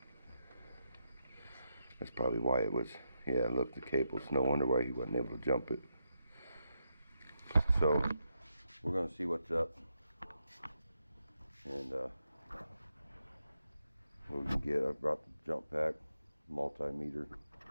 That's probably why it was. Yeah, look, the cable's no wonder why he wasn't able to jump it. So we're gonna see what's up, and what we can get. I brought the jump pack, multimeter,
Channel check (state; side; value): inverted; both; correlation -0.83